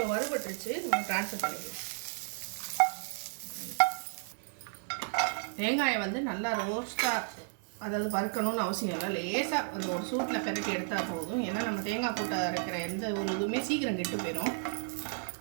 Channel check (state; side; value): silent; left; 56 dB below the other